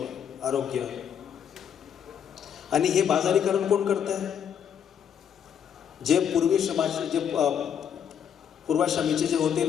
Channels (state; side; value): quieter; right; 8.4 dB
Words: आरोग्य, आणि हे बाजारीकरण कोण करत आहे? जे पूर्वाश्रमीचे जे होते